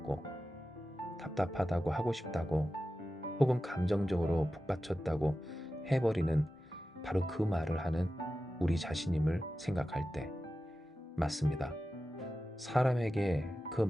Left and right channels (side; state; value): both; normal; correlation 0.93